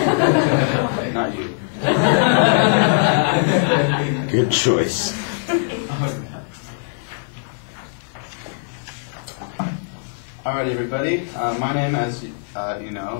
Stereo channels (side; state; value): right; silent; 59 dB below the other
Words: Not you. Good choice. Alright, everybody. My name, as you